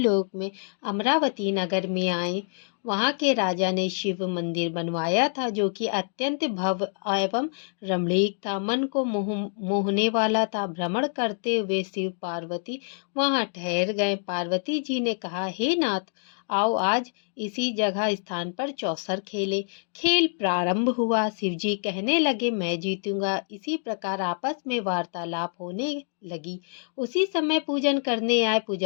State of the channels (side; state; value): right; silent; digital silence